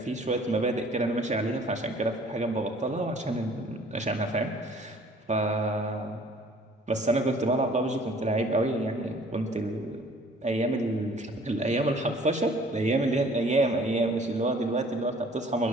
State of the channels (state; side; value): normal; both; correlation 0.54